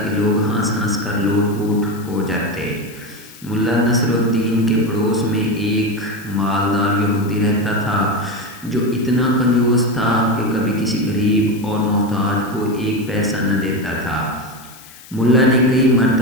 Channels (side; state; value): left; noise; hiss, 20 dB below the sound